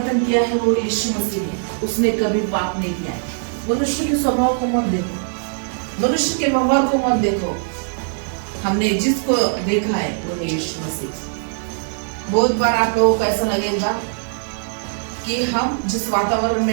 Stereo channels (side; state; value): left; silent; digital silence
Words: किया है वो यीशु मसीह है। उसने कभी पाप नहीं किया है। मनुष्य के स्वभाव को मत देखो, मनुष्य के व्यवहार को मत देखो। हमने जिसको देखा है वो है यीशु मसीह। बहुत बार आप लोगों को ऐसा लगेगा कि हम जिस वातावरण